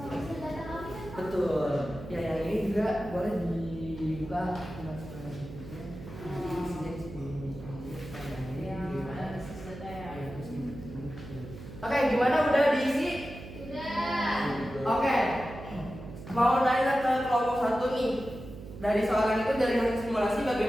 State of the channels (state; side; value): noise; right; hum, 13 dB below the sound